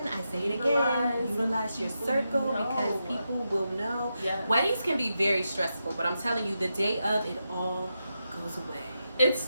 I say it again, utilize your circle because people will know. Yes. Weddings can be very stressful, but I'm telling you, the day of, it all goes away. It's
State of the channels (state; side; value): inverted; both; correlation -0.87